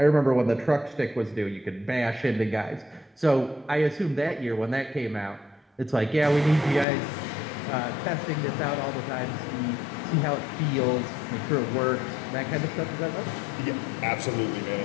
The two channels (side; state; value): right; drops out; at 6.9 s